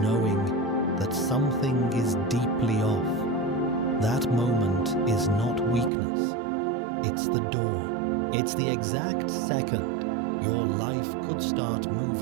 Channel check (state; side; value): drops out; left; at 5.9 s